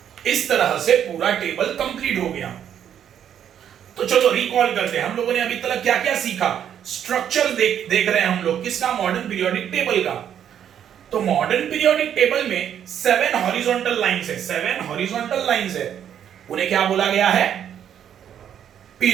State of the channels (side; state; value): left; quieter; 9.4 dB